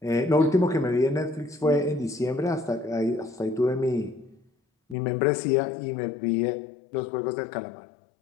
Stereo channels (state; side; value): drops out; right; at 5.0 s